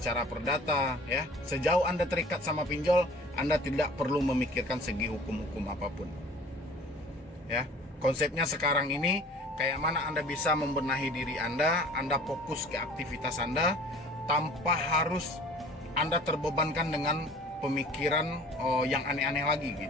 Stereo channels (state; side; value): normal; both; correlation 0.47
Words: perdata ya. Sejauh Anda terikat sama pinjol, Anda tidak perlu memikirkan segi hukum-hukum apapun. Ya. Konsepnya sekarang ini kayak mana Anda bisa membenahi diri Anda fokus ke aktivitas Anda tanpa harus Anda terbebankan dengan pemikiran yang aneh-aneh lagi